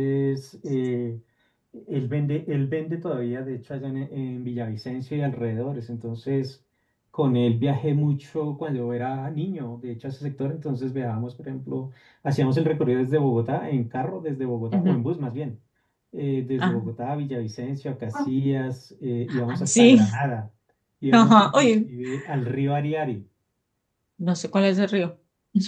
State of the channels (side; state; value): both; identical; correlation 1.00